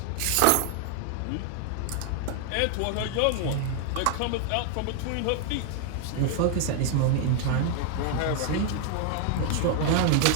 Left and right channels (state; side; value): different; both; correlation 0.00